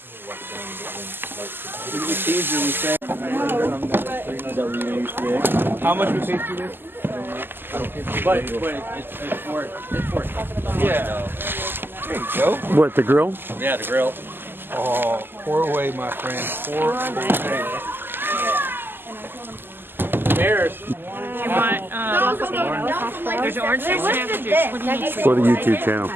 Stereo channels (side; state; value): left; late; 0.097 ms